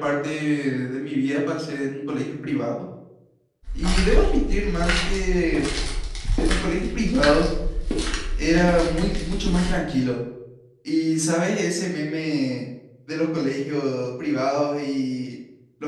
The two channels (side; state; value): both; identical; correlation 1.00